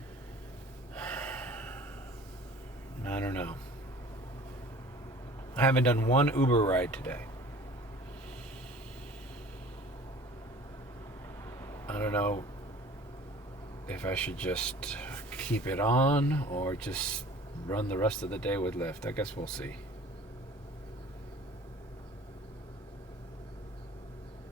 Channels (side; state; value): both; normal; correlation 0.47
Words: I don't know. I haven't done one Uber ride today. I don't know if I should just keep it on or just run the rest of the day with Lyft. I guess we'll see.